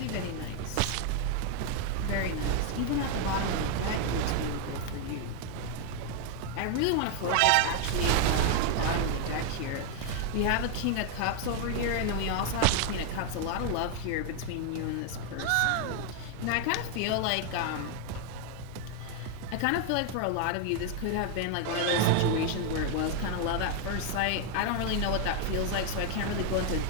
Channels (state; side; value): different; both; correlation 0.00